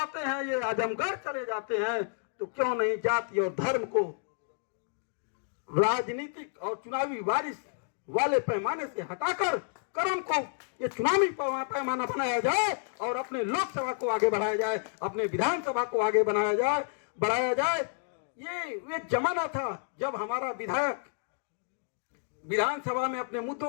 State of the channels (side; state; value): right; silent; digital silence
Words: हैं, ये आजमगढ़ चले जाते हैं। तो क्यों नहीं जाति और धर्म को राजनीतिक और चुनावी बारिश वाले पैमाने से हटाकर कर्म को ये चुनावी पैमाना बनाया जाए और अपने लोकसभा को आगे बढ़ाया जाए, अपने विधानसभा को आगे बढ़ाया जाए। ये जमाना था जब हमारा विधायक विधानसभा में अपने मुद्दों